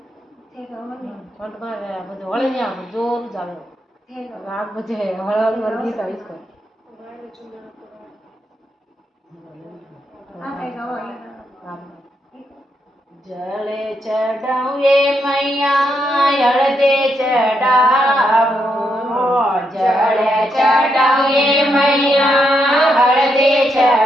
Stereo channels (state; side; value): normal; both; correlation 0.80